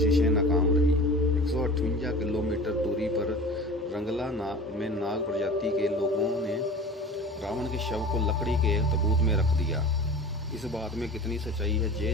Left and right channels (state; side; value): normal; both; correlation 0.38